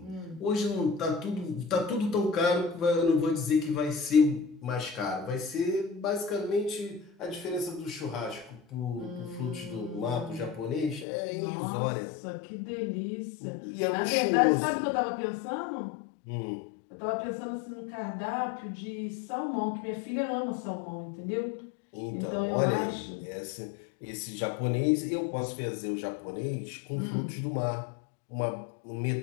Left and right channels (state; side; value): drops out; right; at 11.1 s